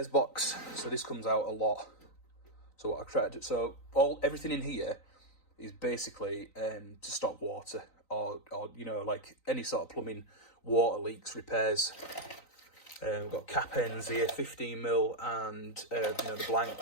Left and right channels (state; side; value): late; right; 3.9 ms